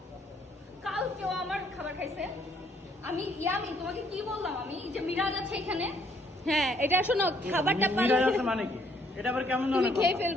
কাল কেউ আমার খাবার খাইছে? আমি ইয়ামি তোমাকে কি বললাম? আমি যে মিরাজ আছে এখানে, হ্যাঁ এটা শোনো, খাবারটা মিরাজ পারলে আছে মানে কি? এটা আবার কেমন তুমি ধরনের খেয়ে কথা?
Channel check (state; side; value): normal; both; correlation 0.67